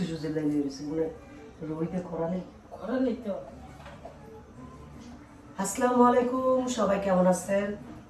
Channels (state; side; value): identical; both; correlation 1.00